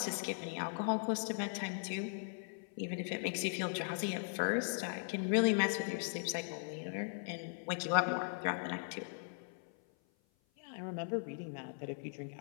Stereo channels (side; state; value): right; silent; 52 dB below the other